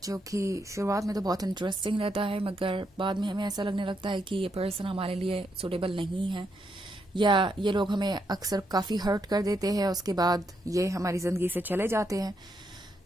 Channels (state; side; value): normal; both; correlation 0.79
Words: कि शुरुआत में तो बहुत इंटरेस्टिंग रहता है, मगर बाद में हमें ऐसा लगने लगता है कि ये पर्सन हमारे लिए सुटेबल नहीं है, या ये लोग हमें अक्सर काफ़ी हर्ट कर देते हैं, उसके बाद ये हमारी ज़िंदगी से चले जाते हैं।